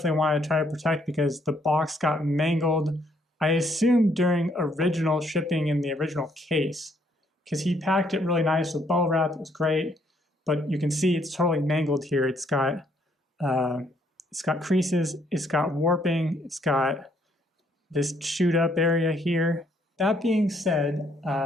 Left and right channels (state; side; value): normal; both; correlation 0.69